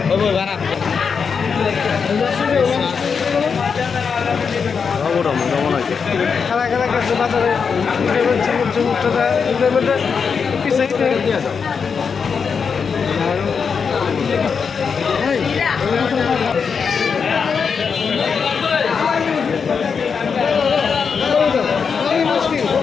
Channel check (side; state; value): right; quieter; 6.0 dB